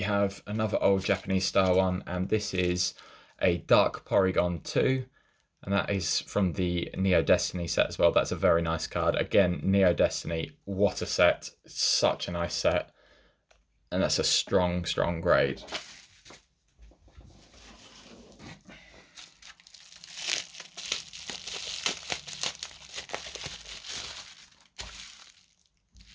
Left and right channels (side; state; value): both; identical; correlation 1.00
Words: have another old Japanese style one, and this is a Dark Porygon 2. And that is from the Neo Destiny set as well. That's a very nice card. Again, Neo Destiny, what a set. Such a nice set. And that's a strong, strong grade.